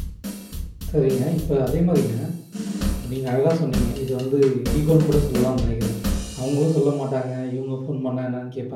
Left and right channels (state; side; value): identical; both; correlation 1.00